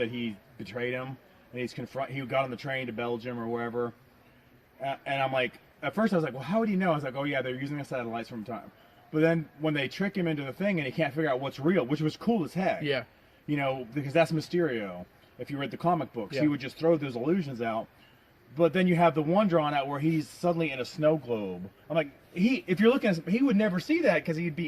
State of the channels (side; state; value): both; identical; correlation 1.00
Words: he betrayed him, and he got on the train to Belgium or wherever, and I'm like, at first I was like, well, how would he know? I was like, oh yeah, they're using the satellites from time. But then when they trick him into the thing and he can't figure out what's real, which was cool as heck. Yeah. Because that's Mysterio. If you read the comic books, yeah. He would just throw those illusions out. But then you have the one drawn out where he's suddenly in a snow globe. I'm like, if you're looking at he would never see that because he'd